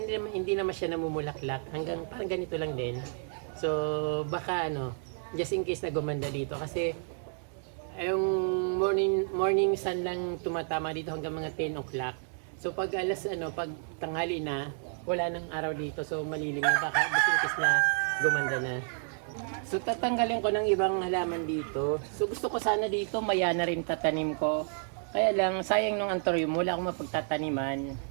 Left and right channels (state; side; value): silent; left; 57 dB below the other